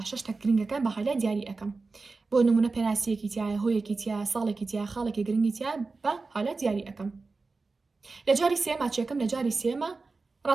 شتە گرنگەکان بە هایلایت دیاری ئەەکەم بۆ نمونە پێناسیەکی تایە هۆیەکی تیا ساڵێکی تیا خاڵێکی گرنگی تیا بە هایلایت دیاری ئەەکەم لە جاری سێما چێکم لە جاری سێمە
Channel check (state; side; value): quieter; left; 3.9 dB